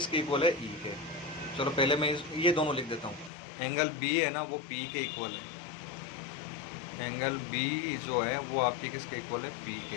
इक्वल है, E के। चलो पहले मैं ये दोनों लिख देता हूँ। एंगल B है ना वो P के इक्वल है, एंगल B जो है वो आपकी किसके इक्वल है, P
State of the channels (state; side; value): drops out; right; at 3.3 s